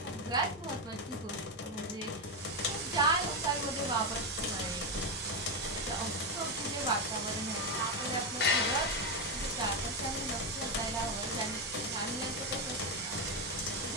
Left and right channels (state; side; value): normal; both; correlation 0.09